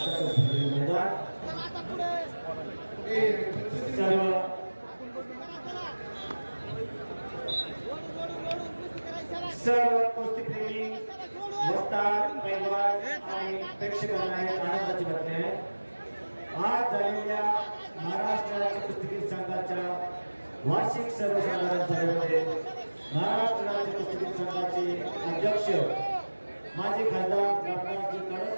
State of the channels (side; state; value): both; inverted; correlation -1.00